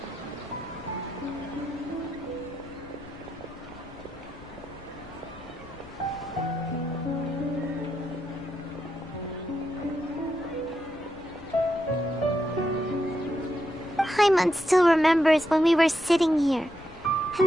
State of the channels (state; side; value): noise; left; rumble, 21 dB below the sound